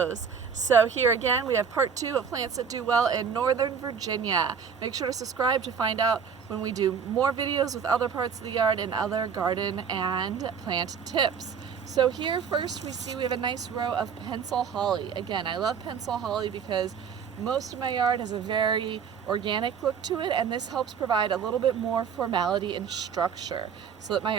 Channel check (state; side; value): quieter; left; 6.8 dB